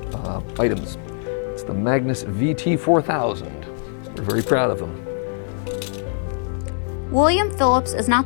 items. It's the Magnus VT4000. We're very proud of them. William Phillips is not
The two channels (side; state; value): right; silent; digital silence